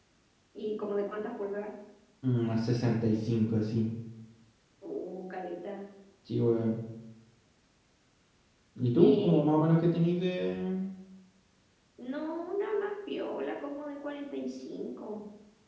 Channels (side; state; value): both; identical; correlation 1.00